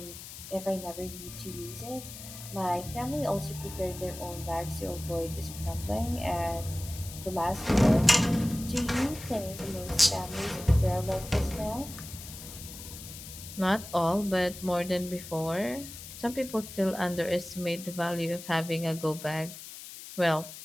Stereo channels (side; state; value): left; noise; hiss, 13 dB below the sound